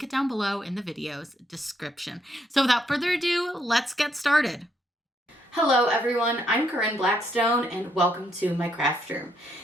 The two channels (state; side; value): normal; both; correlation 0.74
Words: it down below in the video's description. So without further ado, let's get started. Hello everyone, I'm Corinne Blackstone and welcome to my craft room.